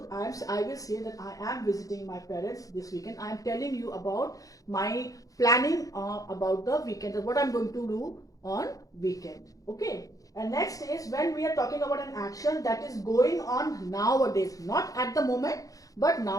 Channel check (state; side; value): late; right; 0.17 ms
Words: I will say that I am visiting my parents this weekend. I am telling you about my planning about the weekend, or what I'm going to do on weekend. Okay. And next is when we are talking about an action that is going on nowadays, not at the moment, but